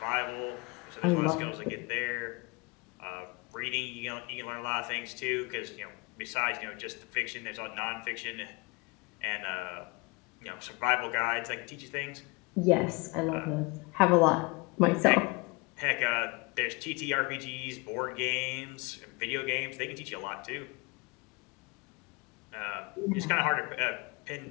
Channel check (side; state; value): right; quieter; 27.7 dB